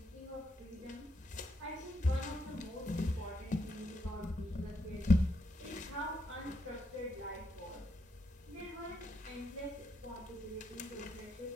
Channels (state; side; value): normal; both; correlation 0.79